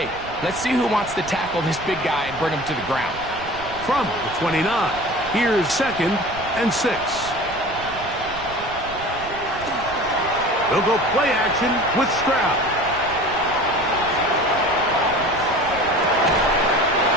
let's see who wants to tackle this big guy and bring him to the ground. From the 29, here's 2nd and 6. They'll go play action with Stroud.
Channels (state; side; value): noise; right; rumble, 15 dB below the sound